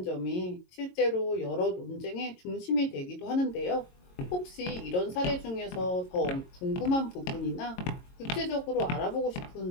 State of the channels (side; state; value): right; late; 22 ms